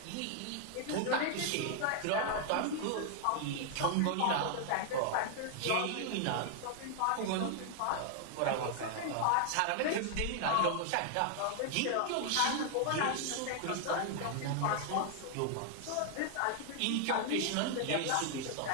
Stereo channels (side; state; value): both; different; correlation 0.00